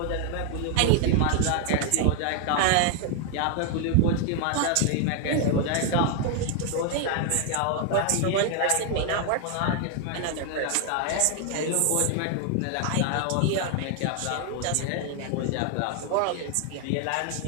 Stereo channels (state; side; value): different; both; correlation 0.00